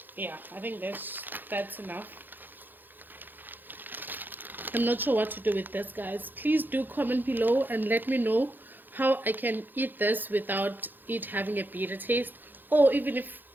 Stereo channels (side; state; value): left; late; 0.090 ms